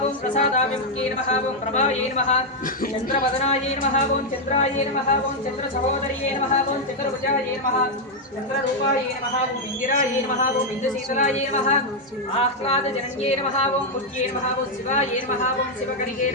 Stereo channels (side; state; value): both; normal; correlation 0.00